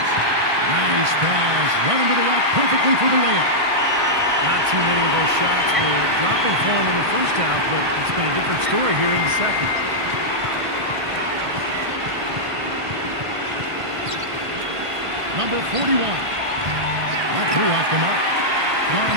Nice pass. Run into the rack perfectly for the layup. Not too many of those shots were dropping for him in the first half, but it's been a different story here in the second. Number 41. That threw off the mark.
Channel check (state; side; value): late; left; 1.5 ms